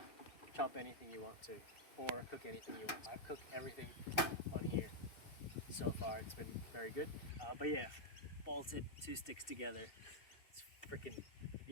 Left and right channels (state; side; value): late; right; 2.6 ms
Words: chop anything you want to, or cook anything you want to. I've cooked everything on here so far. It's been very good. But yeah, bolted two sticks together. It's freaking,